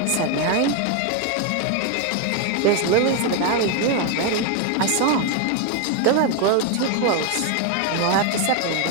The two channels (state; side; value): different; both; correlation 0.01